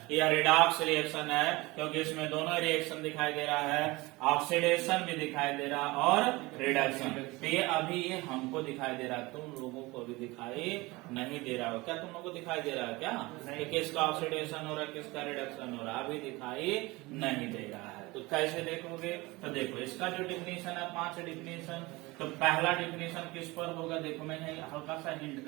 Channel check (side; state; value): left; quieter; 22.3 dB